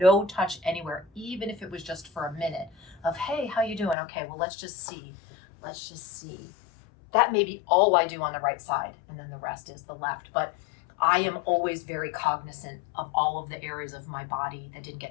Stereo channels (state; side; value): drops out; right; at 4.0 s